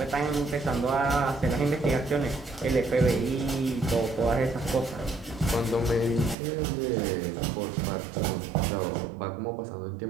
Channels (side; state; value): left; drops out; at 6.4 s